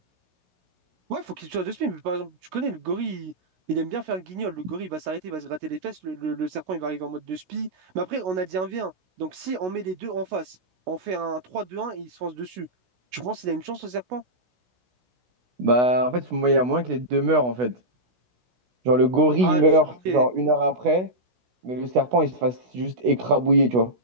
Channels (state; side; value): late; left; 16 ms